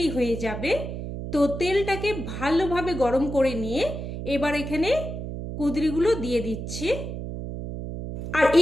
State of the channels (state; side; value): noise; right; hum, 7 dB below the sound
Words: হয়ে যাবে। তো তেলটাকে ভালোভাবে গরম করে নিয়ে এবার এখানে কুঁদরিগুলো দিয়ে দিচ্ছি। আর